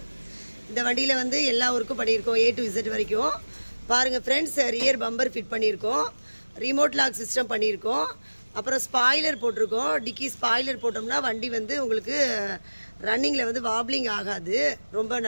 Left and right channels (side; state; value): both; inverted; correlation -1.00